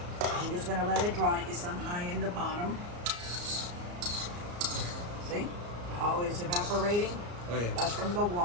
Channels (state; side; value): late; left; 34 ms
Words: I'm just gonna let it dry. It's on high in the bottom. See how it's evaporating? Oh, yeah. That's from the